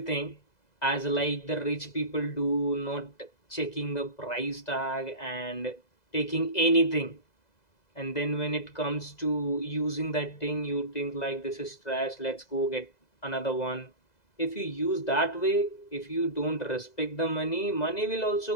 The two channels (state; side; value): late; right; 2.0 ms